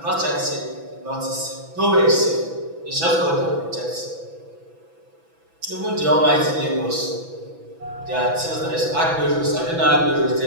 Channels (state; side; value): late; left; 6.0 ms